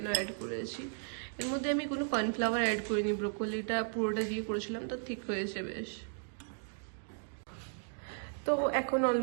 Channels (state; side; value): silent; left; digital silence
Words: অ্যাড করেছি। এর মধ্যে আমি কোনো কর্নফ্লাওয়ার অ্যাড করিনি, ব্রোকলিটা পুরোটা দিয়ে করেছিলাম, তো ঠিক হয়েছে বেশ। তো এখন